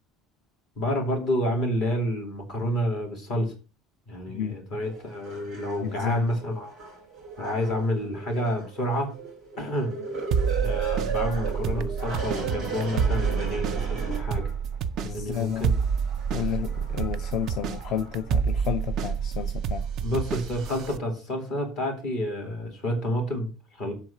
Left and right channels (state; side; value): normal; both; correlation 0.51